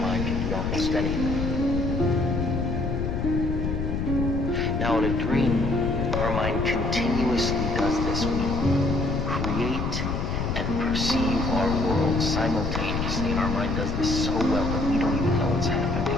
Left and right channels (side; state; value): left; noise; rumble, 1 dB below the sound